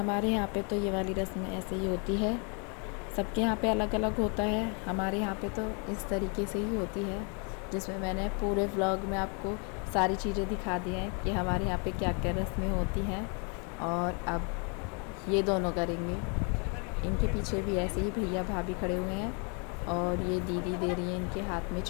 यहाँ पे तो ये वाली रस्म ऐसे ही होती है, सबके यहाँ पे अलग अलग होता है। हमारे यहाँ पे तो इस तरीके से ही होती है, जिसमें मैंने पूरे व्लॉग में आपको सारी चीज़ें दिखा दी हैं कि हमारे यहाँ पे क्या क्या रस्में होती हैं। और अब ये दोनों करेंगे, इनके पीछे भी ऐसे ही भैया भाभी खड़े हुए हैं और ये दीदी दे रही है इनके हाथ में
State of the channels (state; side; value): quieter; right; 36.0 dB